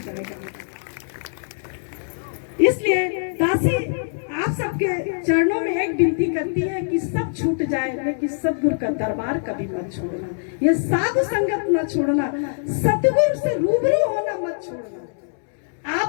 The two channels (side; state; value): right; silent; 63 dB below the other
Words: इसलिए दासी आप सबके चरणों में एक विनती करती है कि सब छूट जाए, लेकिन सतगुरु का दरबार कभी मत छोड़ना, ये साधु संगत मत छोड़ना, सतगुरु से रूबरू होना मत छोड़ना।